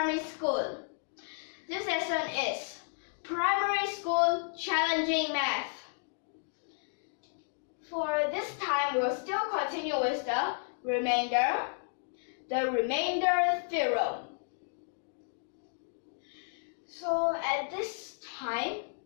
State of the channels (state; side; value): silent; right; digital silence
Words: School. This lesson is Primary School Challenging Math. For this time, we will still continue with the remainder theorem. So at this time,